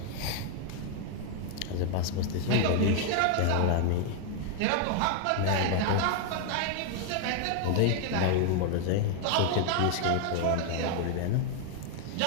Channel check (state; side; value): different; both; correlation 0.01